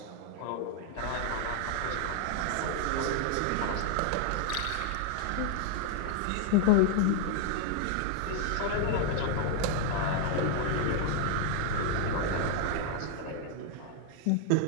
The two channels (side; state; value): both; different; correlation 0.00